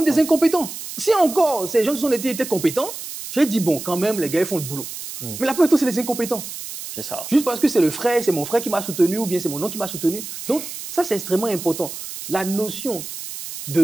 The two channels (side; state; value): right; noise; hiss, 10 dB below the sound